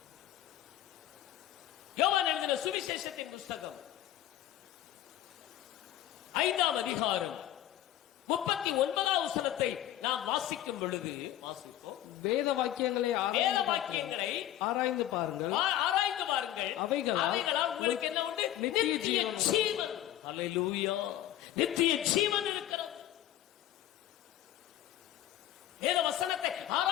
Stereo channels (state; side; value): quieter; right; 12.8 dB